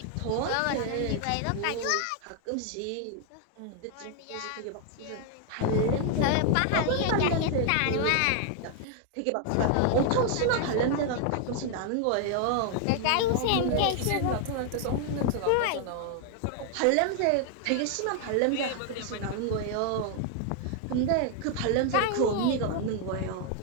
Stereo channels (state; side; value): different; both; correlation 0.00